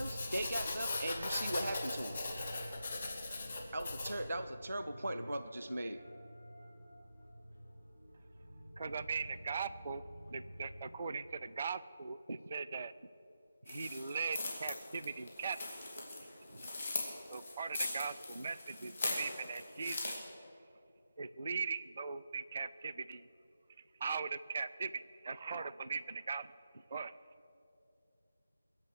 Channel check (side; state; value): both; inverted; correlation -0.85